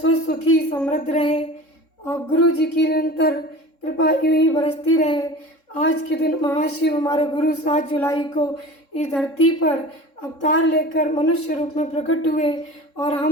सुखी समृद्ध रहे और गुरु जी की निरंतर कृपा यूं ही बरसती रहे। आज के दिन महाशिव हमारे गुरु 7 जुलाई को इस धरती पर अवतार लेकर मनुष्य रूप में प्रकट हुए और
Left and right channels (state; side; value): late; right; 3.7 ms